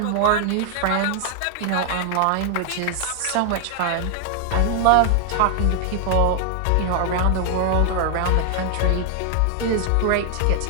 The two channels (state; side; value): different; both; correlation 0.00